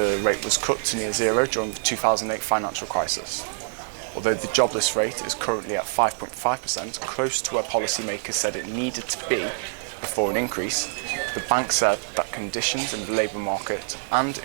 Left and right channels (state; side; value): silent; left; digital silence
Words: rate was cut to near zero during the 2008 financial crisis. Although the jobless rate is currently at 5.5%, close to where policymakers said it needed to be before an increase, the bank said that conditions in the labour market and